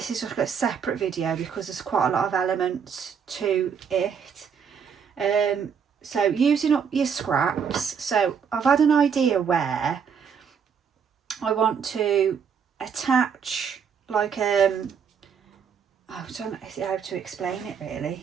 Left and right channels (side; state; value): left; quieter; 6.9 dB